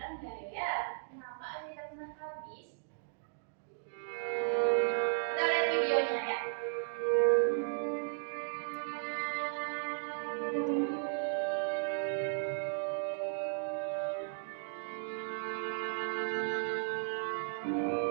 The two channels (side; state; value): left; silent; digital silence